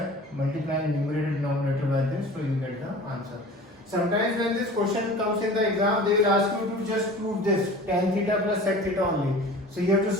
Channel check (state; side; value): normal; both; correlation 0.41